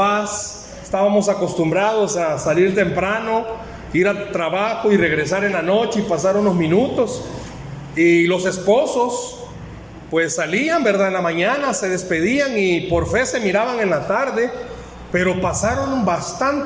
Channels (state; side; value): identical; both; correlation 1.00